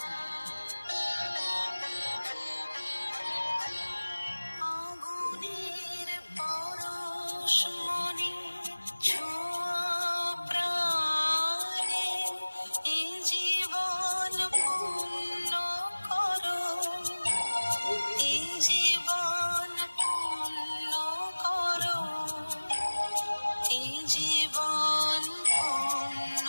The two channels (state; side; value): inverted; both; correlation -1.00